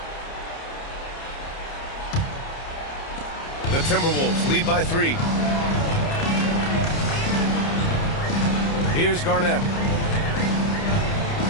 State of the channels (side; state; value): right; late; 30 ms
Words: The Timberwolves lead by 3. Here's Garnett.